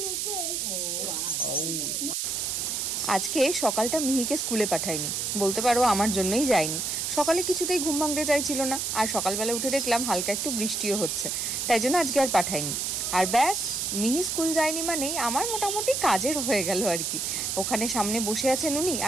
আজকে সকালটা মিহিকে স্কুলে পাঠাইনি, বলতে পারো আমার জন্যই যায়নি। সকালে কিছুতেই ঘুম ভাঙতে চাইছিল না, আর সকালবেলা উঠে দেখলাম হালকা একটু বৃষ্টিও হচ্ছে, তাই জন্য আজকে আর পাঠাইনি। আর ব্যাস, মিহি স্কুল যায়নি মানেই আমার মোটামুটি কাজের হয়ে গেল আর কি। ওখানে সামনে বসে আছেন উনি,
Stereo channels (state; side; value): noise; right; hiss, 1 dB below the sound